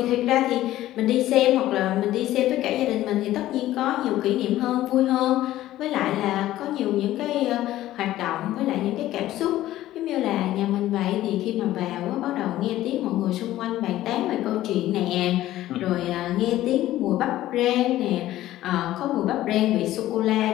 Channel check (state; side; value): quieter; right; 14.5 dB